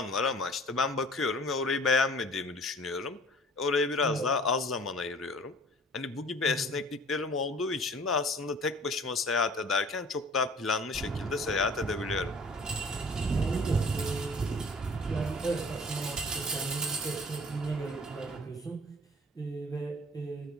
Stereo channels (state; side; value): normal; both; correlation 0.48